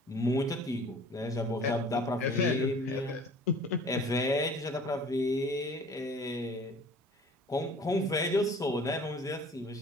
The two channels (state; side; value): normal; both; correlation 0.48